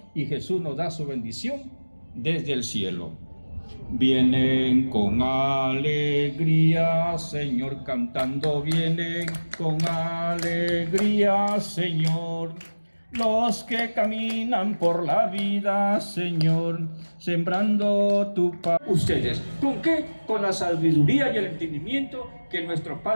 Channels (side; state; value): both; inverted; correlation -1.00